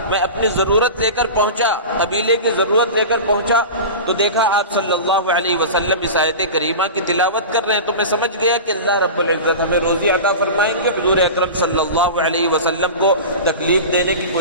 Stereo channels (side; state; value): both; inverted; correlation -0.30